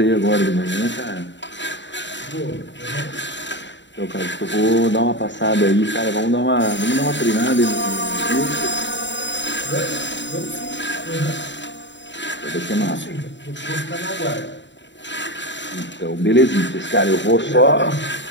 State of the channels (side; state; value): right; late; 0.53 ms